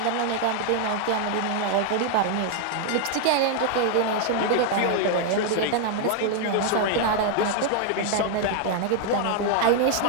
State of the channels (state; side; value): different; both; correlation 0.00